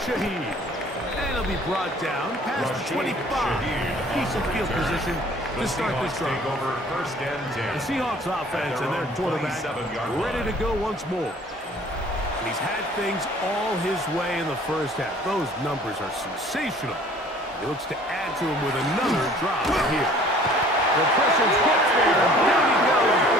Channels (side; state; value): both; normal; correlation 0.53